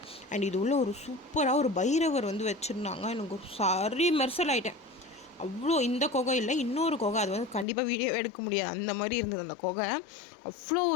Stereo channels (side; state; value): right; drops out; at 7.7 s